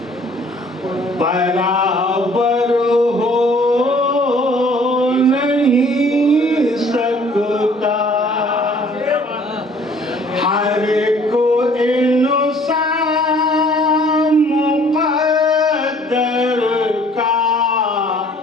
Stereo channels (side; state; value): both; normal; correlation 0.56